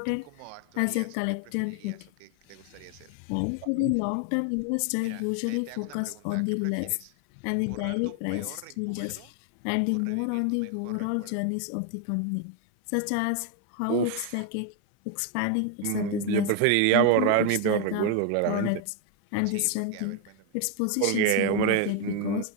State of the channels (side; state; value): both; different; correlation 0.01